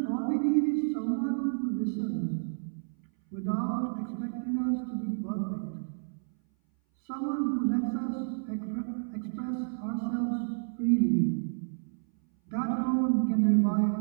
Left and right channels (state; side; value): silent; left; 58 dB below the other